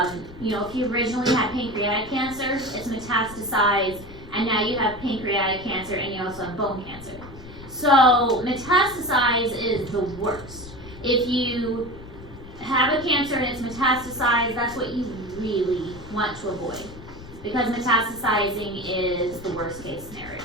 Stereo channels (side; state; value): left; noise; rumble, 16 dB below the sound